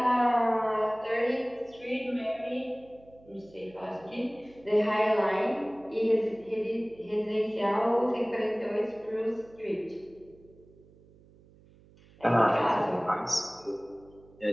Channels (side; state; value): right; noise; hum, 26 dB below the sound